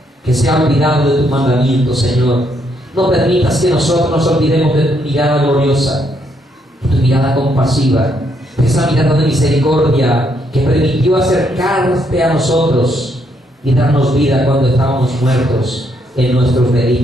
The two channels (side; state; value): both; normal; correlation 0.74